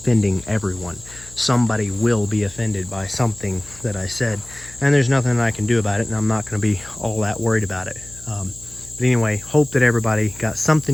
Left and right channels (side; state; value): left; noise; hum, 20 dB below the sound